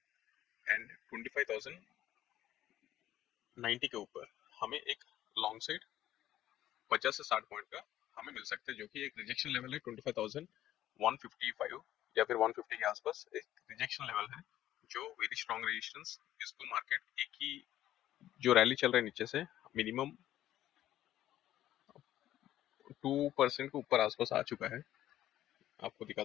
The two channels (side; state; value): right; quieter; 13.0 dB